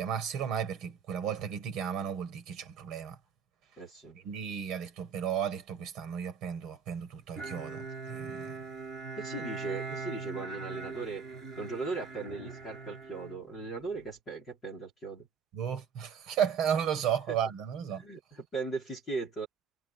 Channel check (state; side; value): quieter; left; 6.5 dB